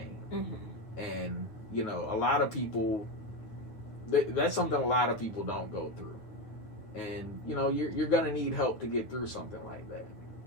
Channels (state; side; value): late; right; 9.2 ms